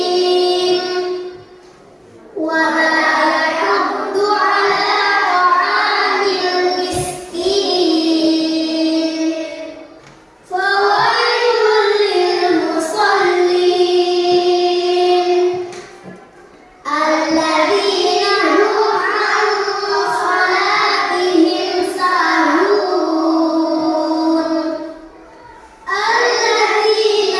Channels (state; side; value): identical; both; correlation 1.00